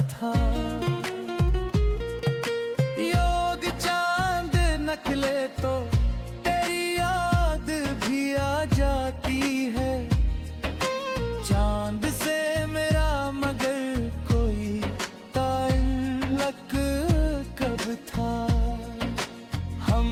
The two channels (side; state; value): both; identical; correlation 1.00